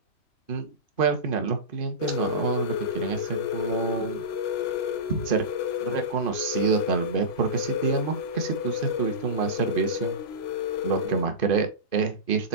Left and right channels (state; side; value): late; right; 2.5 ms